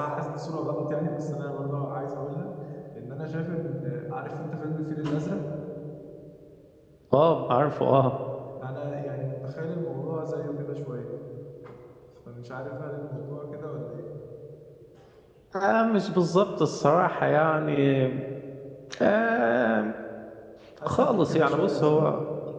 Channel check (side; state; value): both; identical; correlation 1.00